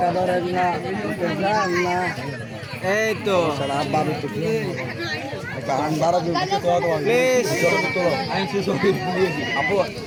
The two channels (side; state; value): both; identical; correlation 1.00